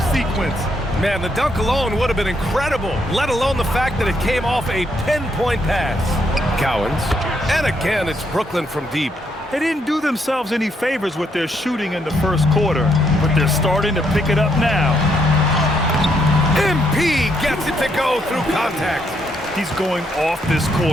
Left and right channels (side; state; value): both; normal; correlation 0.75